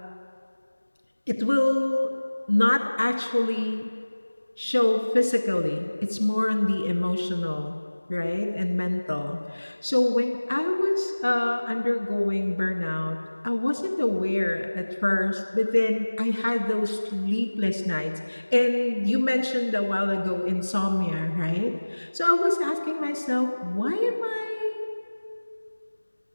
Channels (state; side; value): inverted; both; correlation -1.00